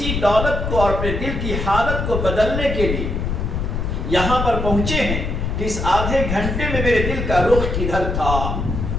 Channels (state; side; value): noise; left; rumble, 2 dB below the sound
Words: دولت کو اور اپنے دل کی حالت کو بدلنے کے لیے یہاں پر پہنچے ہیں کہ اس آدھے گھنٹے میں میرے دل کا رخ کدھر تھا؟